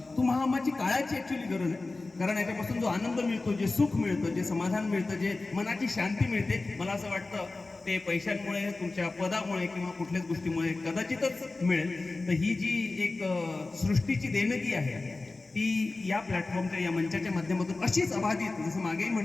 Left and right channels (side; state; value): right; quieter; 3.4 dB